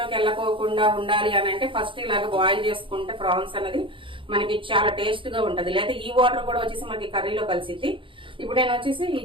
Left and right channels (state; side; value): late; left; 0.25 ms